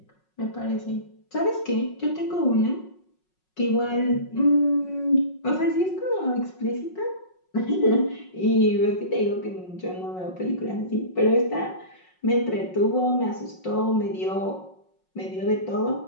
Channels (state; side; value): late; right; 5.5 ms